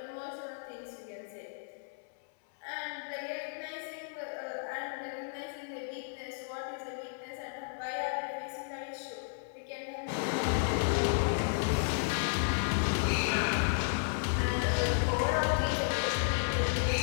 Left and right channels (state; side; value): silent; right; 56 dB below the other